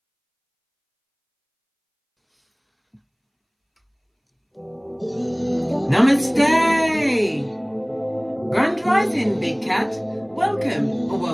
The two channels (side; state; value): both; identical; correlation 1.00